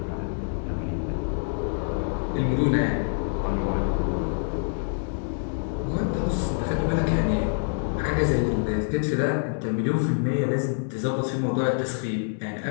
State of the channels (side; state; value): right; silent; 61 dB below the other